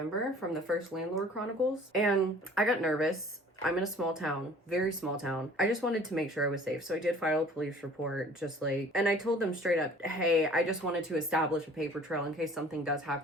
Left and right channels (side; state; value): both; normal; correlation 0.50